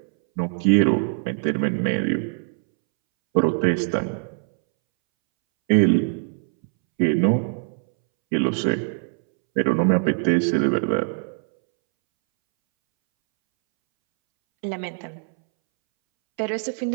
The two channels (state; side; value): silent; left; 64 dB below the other